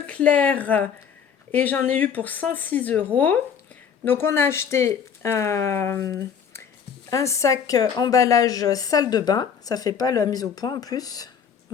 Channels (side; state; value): right; quieter; 7.3 dB